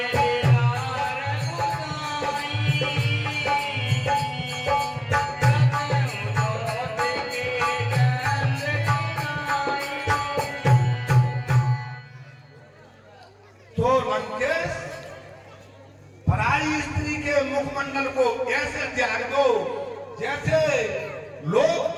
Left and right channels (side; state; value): both; identical; correlation 1.00